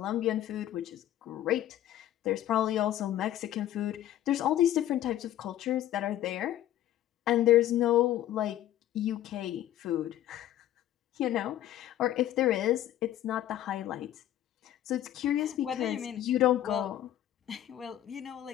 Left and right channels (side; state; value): right; quieter; 12.5 dB